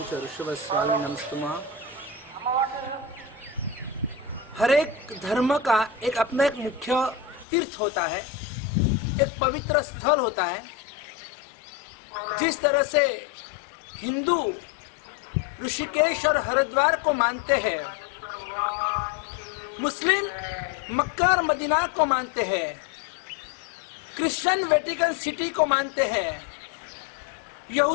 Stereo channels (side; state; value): right; drops out; at 7.5 s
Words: च ऋषभस्वामी नमस्तुमा। हर एक धर्म का एक अपना एक मुख्य तीर्थ होता है, एक पवित्र स्थल होता है। जिस तरह से हिंदू ऋषिकेश और हरिद्वार को मानते हैं, मुस्लिम मक्का और मदीना को मानते हैं, क्रिश्चियन वेटिकन सिटी को मानते हैं,